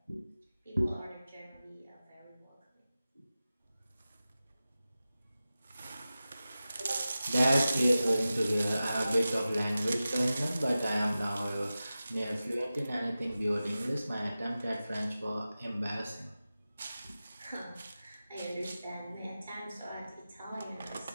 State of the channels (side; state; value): both; inverted; correlation -0.94